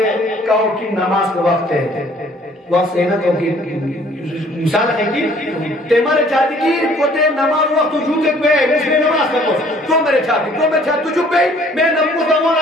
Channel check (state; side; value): normal; both; correlation 0.57